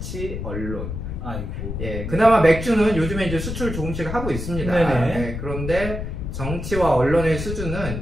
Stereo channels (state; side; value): noise; left; rumble, 5 dB below the sound